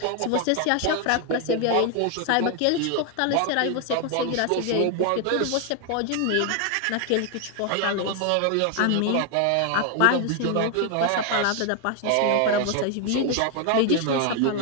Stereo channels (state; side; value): different; both; correlation 0.00